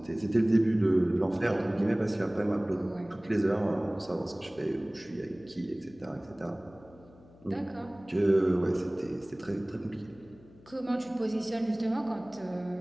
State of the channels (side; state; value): left; noise; hum, 24 dB below the sound